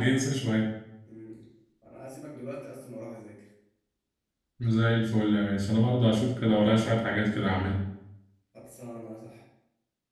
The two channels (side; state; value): both; identical; correlation 1.00